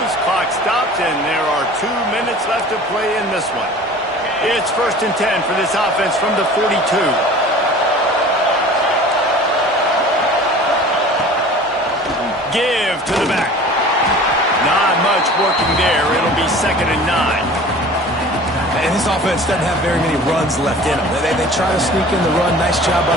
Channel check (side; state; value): both; normal; correlation 0.43